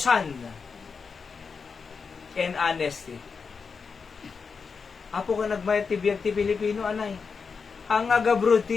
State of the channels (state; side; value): quieter; right; 5.3 dB